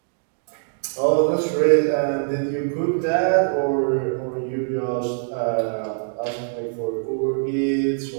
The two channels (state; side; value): silent; left; digital silence